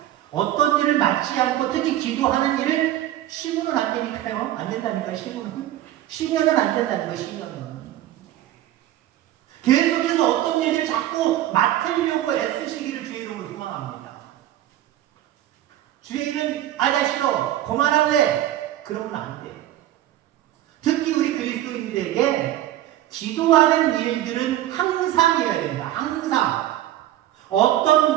어떤 일을 맡지 않고 특히 기도하는 일을 시무는 안 되니까요. 안 된다니까, 시무는. 시면은 안 된다는 거예요, 시면은. 계속해서 어떤 일을 자꾸 맡으려고 애쓰시기를 주의 이름으로 소망합니다. 주의 이름, 나 싫어. 그만할래. 그러면 안 돼. 특히 우리 그리스도인들에게 기도하는 일들은 항상이어야 됩니다. 항상.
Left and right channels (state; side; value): quieter; left; 13.3 dB